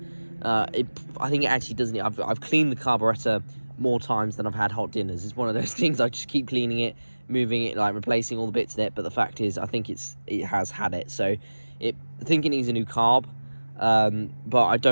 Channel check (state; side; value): inverted; both; correlation -1.00